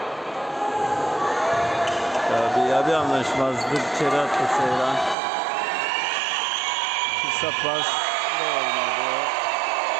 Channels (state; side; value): drops out; left; at 5.2 s